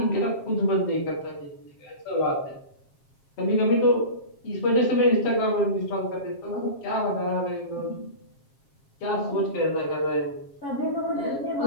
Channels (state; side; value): late; right; 7.4 ms